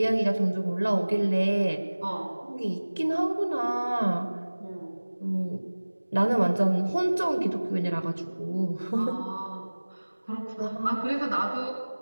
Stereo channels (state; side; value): inverted; both; correlation -1.00